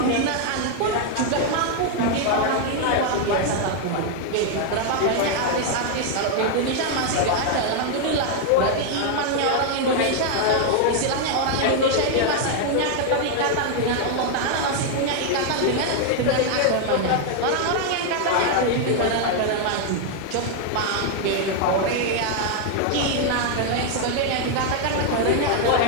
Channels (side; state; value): both; different; correlation 0.00